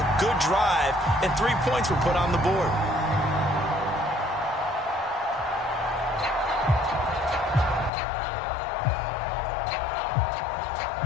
a good drive, and 3 points were put on the board.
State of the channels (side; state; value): right; drops out; at 7.9 s